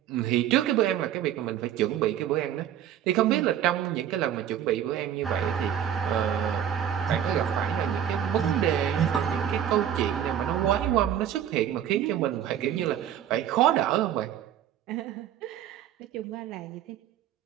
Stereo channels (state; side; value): quieter; left; 10.1 dB